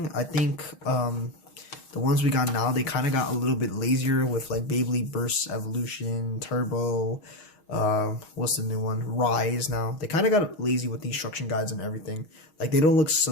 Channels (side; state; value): right; late; 6.4 ms